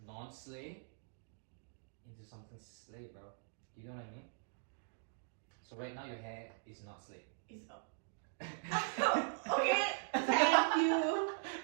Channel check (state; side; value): silent; left; digital silence